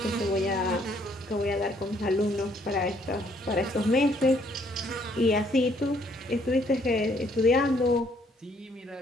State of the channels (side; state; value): both; normal; correlation 0.67